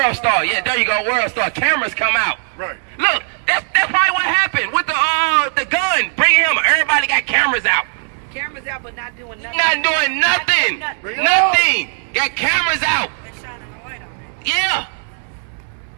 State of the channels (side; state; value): left; silent; 68 dB below the other